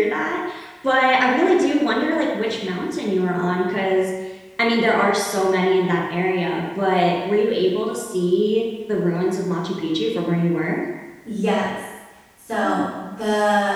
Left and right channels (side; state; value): both; identical; correlation 1.00